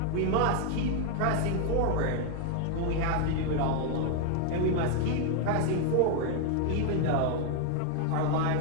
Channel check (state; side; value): different; both; correlation 0.01